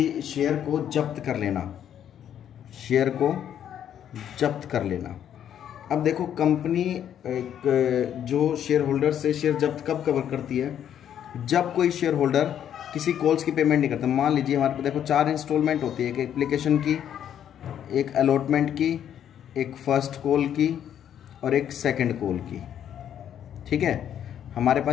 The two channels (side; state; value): right; quieter; 9.8 dB